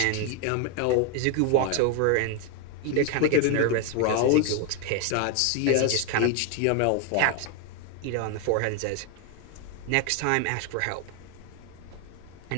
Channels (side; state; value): both; different; correlation 0.01